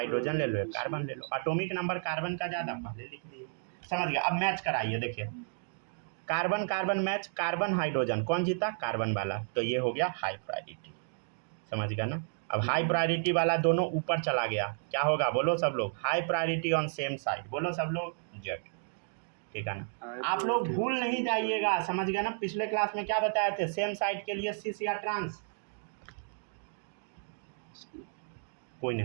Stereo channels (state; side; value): silent; left; digital silence